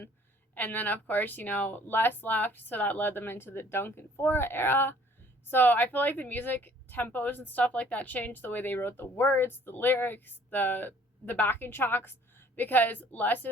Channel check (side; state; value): both; normal; correlation 0.57